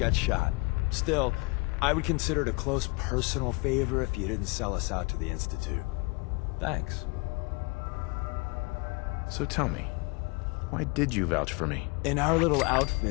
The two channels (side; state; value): right; quieter; 27.5 dB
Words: shot. Still, I would consider it a close personal favor if you didn't sell us out to the Institute. Thanks. So tell me, why did you vouch for me? In our little